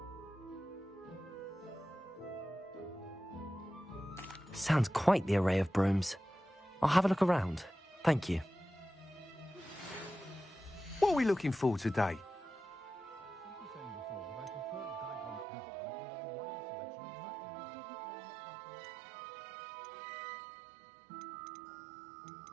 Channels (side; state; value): left; drops out; at 15.5 s